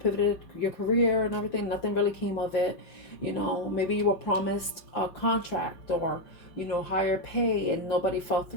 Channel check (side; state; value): right; late; 5.8 ms